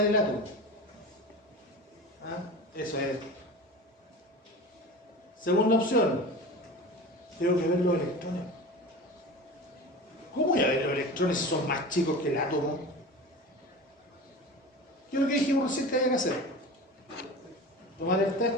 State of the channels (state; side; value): normal; both; correlation 0.33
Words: ver el átomo. ¿Ah? Eso es. Segunda opción, tengo que ver los electrones. ¿Cómo voy a ver los electrones si son más chicos que el átomo? Yo lo que dijimos recién que había que hacer. Tomar el